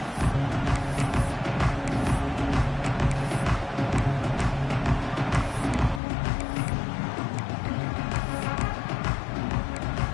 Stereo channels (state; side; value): drops out; right; at 6.0 s